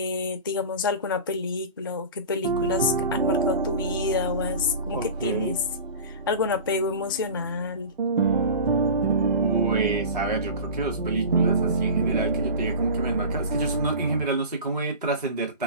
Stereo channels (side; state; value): both; inverted; correlation -0.33